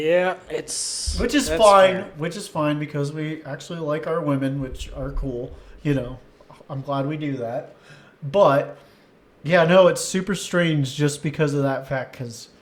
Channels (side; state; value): both; identical; correlation 1.00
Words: it's Which is that's fine. fair. Which is fine because we actually like our women, which are cool. I'm glad we do that. But yeah, no, it's super strange just because of that fact. Because